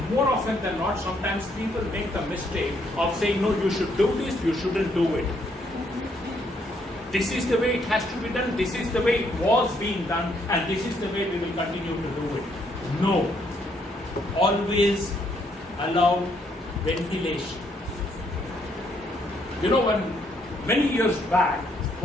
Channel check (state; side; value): normal; both; correlation 0.71